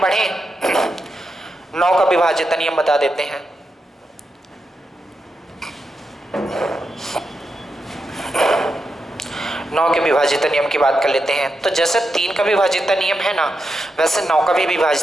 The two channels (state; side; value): normal; both; correlation 0.86